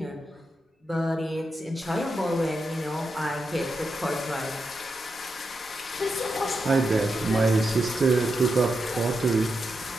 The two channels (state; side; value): normal; both; correlation 0.86